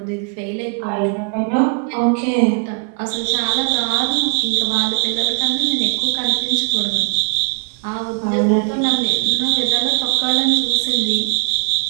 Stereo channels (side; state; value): left; quieter; 34.6 dB